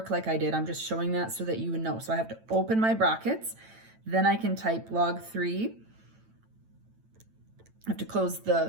like I did. I'm just showing that so that you would know. So I have to open my brackets. Then I can type log 3. I have to close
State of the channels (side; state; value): left; late; 9.0 ms